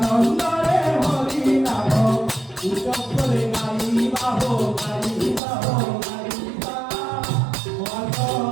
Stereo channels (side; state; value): left; drops out; at 5.4 s